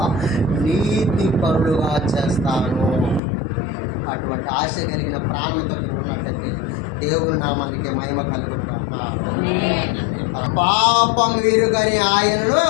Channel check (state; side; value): drops out; right; at 3.2 s